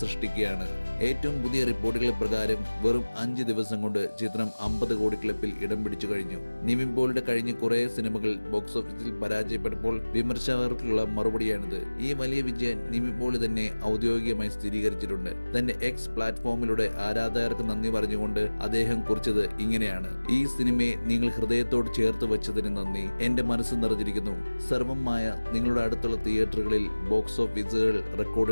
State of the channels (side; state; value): both; inverted; correlation -1.00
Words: സൃഷ്ടിക്കുകയാണ്. ഏറ്റവും പുതിയ റിപ്പോർട്ടുകൾ പ്രകാരം വെറും 5 ദിവസം കൊണ്ട് ചിത്രം 50 കോടി ക്ലബിൽ ഇടം പിടിച്ചു കഴിഞ്ഞു. നിവിൻ പോളിയുടെ കഴിഞ്ഞ കുറെ സിനിമകൾ ബോക്സ് ഓഫീസിൽ പരാജയപ്പെട്ടപ്പോൾ വിമർശകർക്കുള്ള മറുപടിയാണിത്. ഈ വലിയ വിജയം നിവിൻ പോളി തന്നെ ഔദ്യോഗികമായി സ്ഥിരീകരിച്ചിട്ടുണ്ട്. തന്റെ എക്സ് പ്ലാറ്റ്ഫോമിലൂടെ ആരാധകർക്ക് നന്ദി പറഞ്ഞുകൊണ്ട് അദ്ദേഹം കുറിച്ചത് ഇങ്ങനെയാണ്: ഈ സിനിമയെ നിങ്ങൾ ഹൃദയത്തോട് ചേർത്ത് വെച്ചതിന് നന്ദി. എന്റെ മനസ്സ് നിറഞ്ഞിരിക്കുന്നു. സർവമായ നിങ്ങളുടെ അടുത്തുള്ള തിയേറ്ററുകളിൽ ബോക്സ് ഓഫീസുകൾ